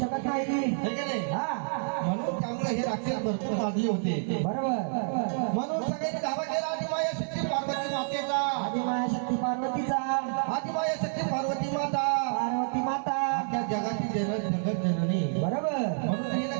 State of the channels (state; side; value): silent; left; 59 dB below the other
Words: नाही. है की नाही? म्हणून त्यामुळे हे राक्षस भरपूर माजले होते. बरोबर. म्हणून सगळ्यांनी धावा केला आदिमाया शक्ती पार्वती मातेचा, आदिमाया शक्ती पार्वतीचा, आदिमाया शक्ती पार्वती माता, पार्वती माता, त्या जगाची जगत जननी. बरोबर. म्हणून तिने